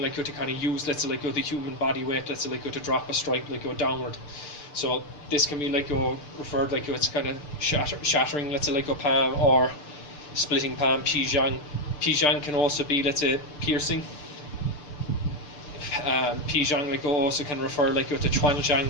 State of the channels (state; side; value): late; right; 6.8 ms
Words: like to kind of use, let's say, like the human body weight, let's say, like to drop a strike like downward. So this can be like referred like it's kind of shattering, let's say, like palm, or splitting palm, pizhang. Pizhang can also be, let's say, piercing. Pizhang like also can refer like to chuanzhang,